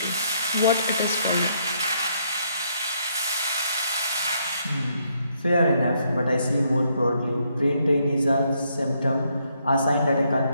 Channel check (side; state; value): both; inverted; correlation -0.73